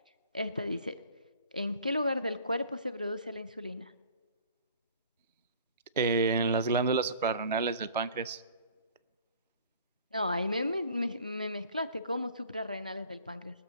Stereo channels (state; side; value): inverted; both; correlation -0.50